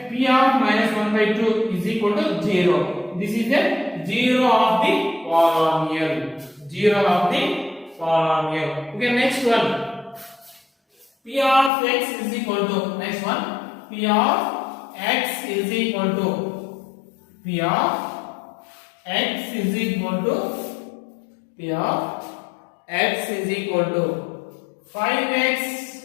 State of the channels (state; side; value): drops out; right; at 11.7 s